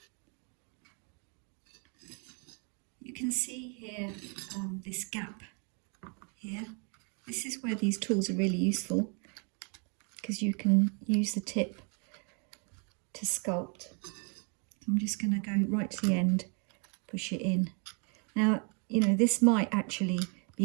You can see here this gap here. This is where these tools are really useful because you can use the tip to sculpt. I'm just going to go right to the end, push it in. Now, you know, this might actually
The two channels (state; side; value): quieter; left; 37.2 dB